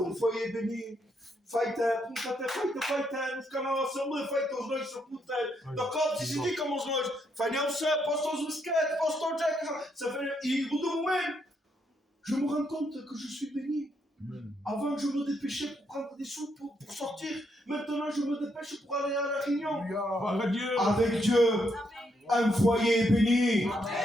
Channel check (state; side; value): normal; both; correlation 0.77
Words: foyer est béni. Fajte, fajte, kanała są, fajte, znoj się tutaj. Do kopci się nie komu znoj. Fajnie się, posto z wysket, posto jack. Ça fait, et au bout d'un moment, je me rends compte que je suis béni. Avant, je me dépêchais pour prendre des sous pour sortir. Maintenant, je me dépêche pour aller à la réunion. Avec Dieu, un foyer est béni.